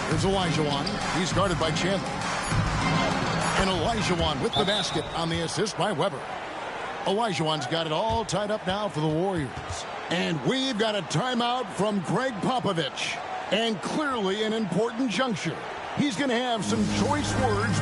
There's Olajuwon. He's guarded by Chandler. And Olajuwon with the basket on the assist by Weber. Olajuwon's got it all tied up now for the Warriors. And we've got a timeout from Greg Popovich. And clearly an important juncture. He's going to have some choice words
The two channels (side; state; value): both; identical; correlation 1.00